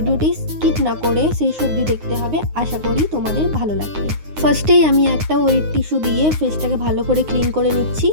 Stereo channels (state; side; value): late; left; 9.6 ms